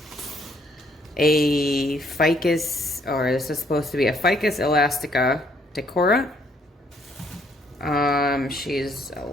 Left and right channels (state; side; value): normal; both; correlation 0.67